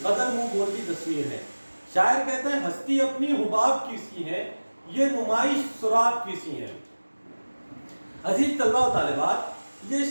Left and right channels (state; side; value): inverted; both; correlation -1.00